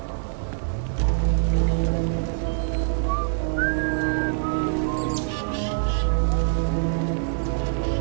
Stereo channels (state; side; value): silent; left; digital silence